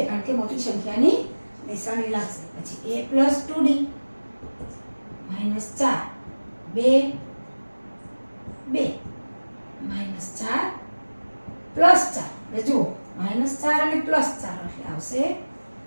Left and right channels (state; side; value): inverted; both; correlation -1.00